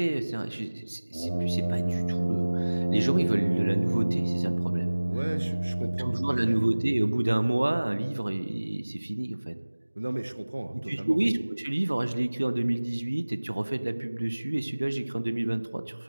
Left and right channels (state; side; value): inverted; both; correlation -1.00